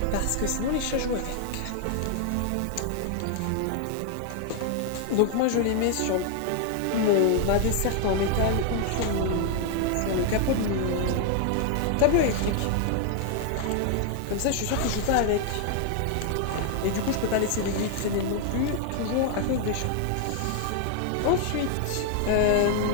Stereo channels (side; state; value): both; different; correlation 0.00